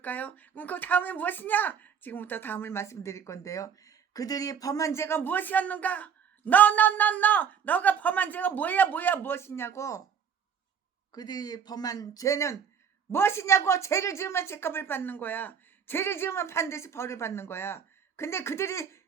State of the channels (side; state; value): left; quieter; 7.5 dB